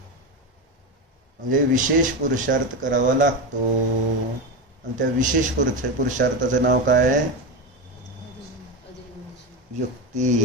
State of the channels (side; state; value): both; normal; correlation 0.17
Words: म्हणजे विशेष पुरुषार्थ करावा लागतो. आणि त्या विशेष पुरुषार्थाचं नाव काय आहे?